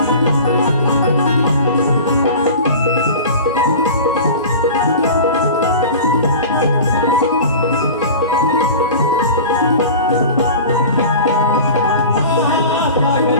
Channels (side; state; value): both; inverted; correlation -0.36